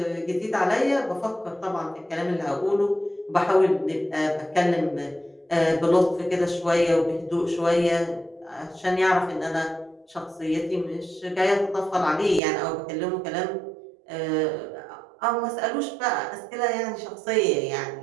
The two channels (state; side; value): drops out; left; at 12.4 s